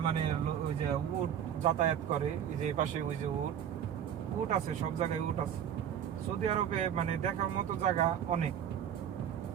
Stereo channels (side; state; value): left; quieter; 9.4 dB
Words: মানে ওই যে উট যাতায়াত করে। এই যে পাশে ওই যে উট, উট আছে, সব জায়গায় উট আছে। সৌদি আরবে মানে দেখার মতো জায়গা অনেক।